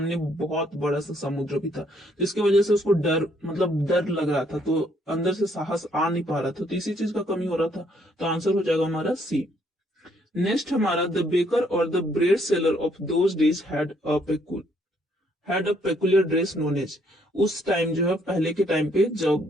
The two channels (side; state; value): both; normal; correlation 0.68